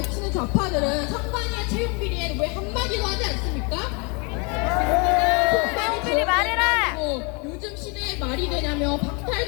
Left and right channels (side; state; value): right; quieter; 32.0 dB